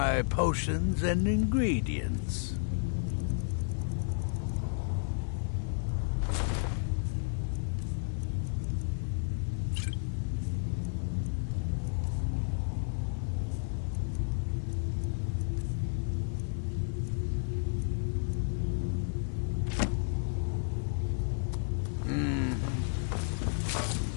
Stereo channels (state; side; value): silent; right; 56 dB below the other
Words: potions and ingredients?